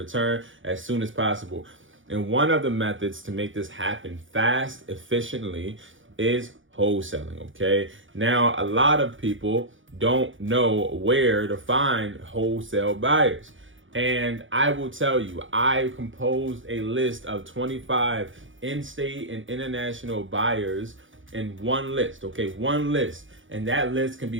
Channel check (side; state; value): left; late; 0.57 ms